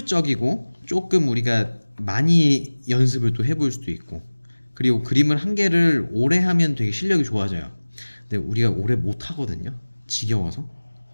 조금 우리가 많이 연습을 또 해볼 수도 있고 그리고 그림을 한 개를 오래 하면 되게 실력이 좋아져요. 근데 우리가 오래 못 하거든요. 지겨워서.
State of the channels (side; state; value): both; inverted; correlation -1.00